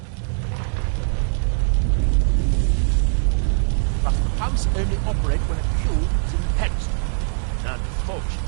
But the pumps only operate when a cube is in the pedestal.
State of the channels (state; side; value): silent; left; digital silence